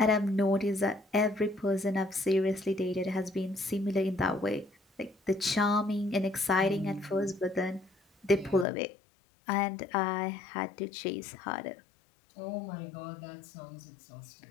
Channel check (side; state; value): right; drops out; at 8.7 s